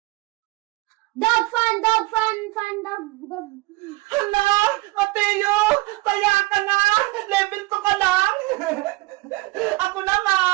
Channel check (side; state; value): left; quieter; 22.2 dB